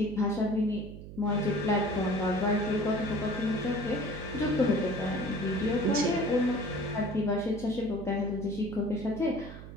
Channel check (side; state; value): right; noise; hum, 13 dB below the sound